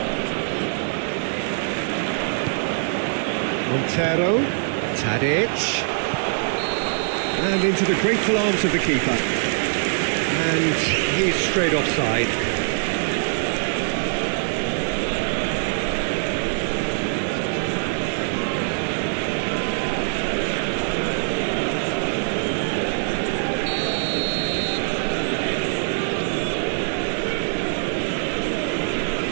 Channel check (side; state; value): left; silent; digital silence